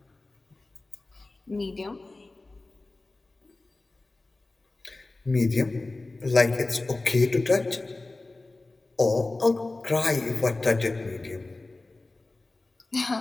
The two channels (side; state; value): right; quieter; 3.2 dB